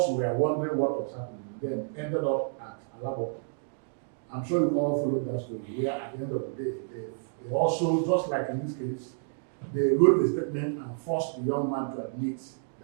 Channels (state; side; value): silent; left; digital silence